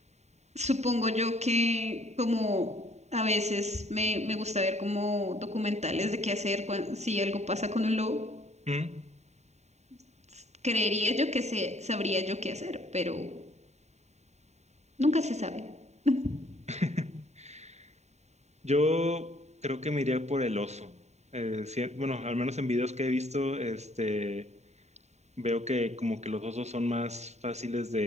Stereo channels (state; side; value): late; left; 0.32 ms